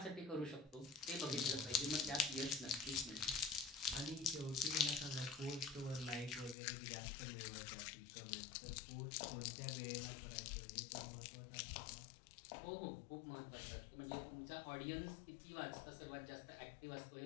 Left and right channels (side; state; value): right; drops out; at 6.6 s